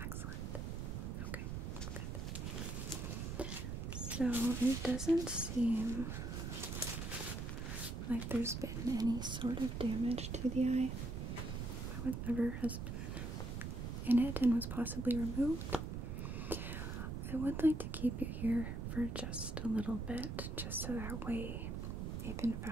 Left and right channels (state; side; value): noise; right; rumble, 4 dB below the sound